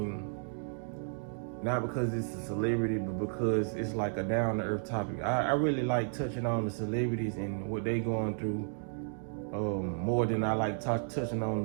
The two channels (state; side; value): silent; left; digital silence